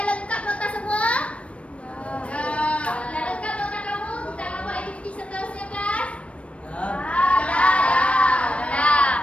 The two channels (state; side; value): late; right; 0.062 ms